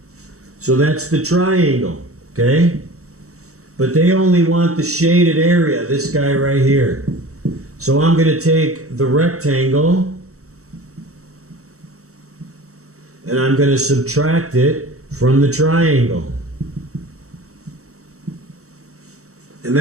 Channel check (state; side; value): late; left; 0.65 ms